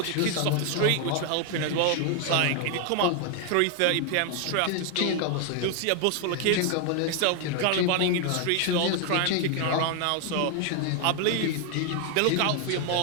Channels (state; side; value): different; both; correlation 0.01